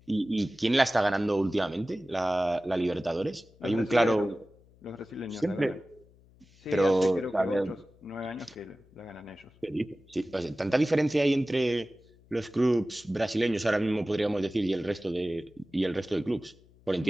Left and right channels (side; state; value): left; noise; hum, 28 dB below the sound